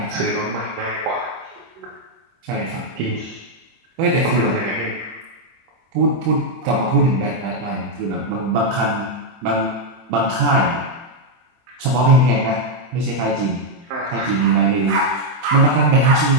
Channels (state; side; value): late; left; 24 ms